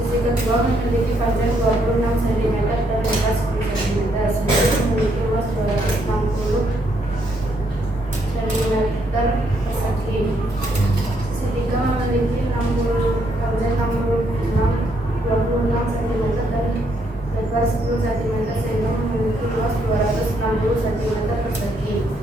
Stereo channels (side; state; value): both; normal; correlation 0.73